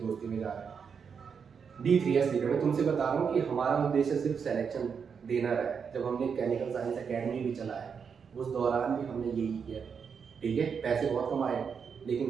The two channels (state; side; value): quieter; left; 6.4 dB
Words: दोस्ती में जा रहे हैं। D3S लिखा, मैं तुमसे बता रहा हूँ कि हमारा उद्देश्य सिर्फ सिलेक्शन देना रहा है। जब हमने केमिकल साइंस अकेडमी भी चलाया, उस दौरान भी हमने यही किया, ठीक है। पैसे बहुत कमाए,